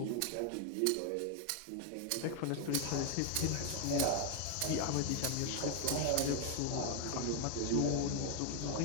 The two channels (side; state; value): both; different; correlation 0.01